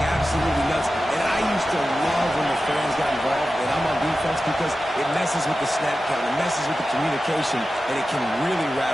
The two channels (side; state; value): both; normal; correlation 0.93